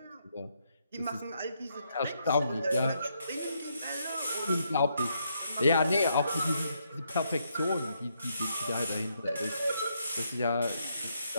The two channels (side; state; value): both; inverted; correlation -0.77